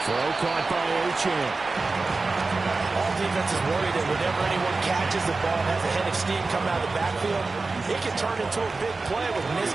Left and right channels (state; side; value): quieter; left; 3.7 dB